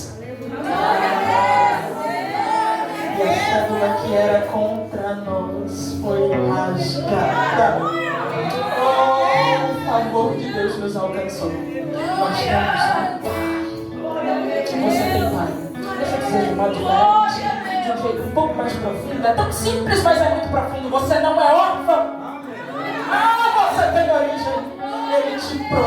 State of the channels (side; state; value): both; identical; correlation 1.00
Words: E a cédula que era contra nós foi rasgada. Oh, o favor de Deus nos alcançou. Nós temos um pai. Você tem pai. Deixa eu dizer de modo diferente, de um jeito um pouco mais profundo. É tão simples, mas é muito profundo. Você não é órfão. Ah, você tem origem. Ele te